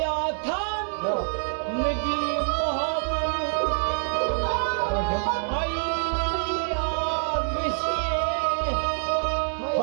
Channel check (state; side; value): silent; left; digital silence